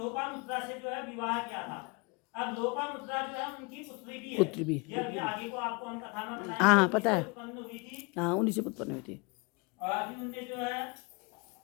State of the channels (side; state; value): right; quieter; 29.2 dB